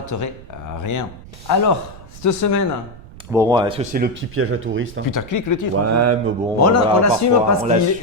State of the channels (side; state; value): right; noise; rumble, 18 dB below the sound